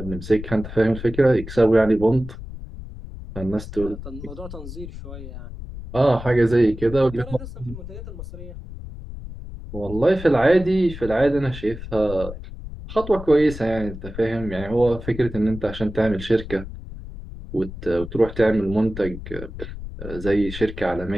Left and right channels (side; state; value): left; noise; rumble, 11 dB below the sound